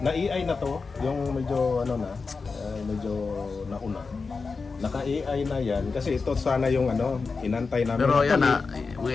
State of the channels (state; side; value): quieter; right; 4.5 dB